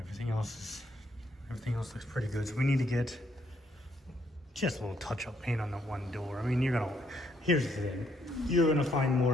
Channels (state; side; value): normal; both; correlation 0.72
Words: else looks pretty good. So we need to get just a little touch-up paint on the one door. I mean, here's the thing, you're gonna find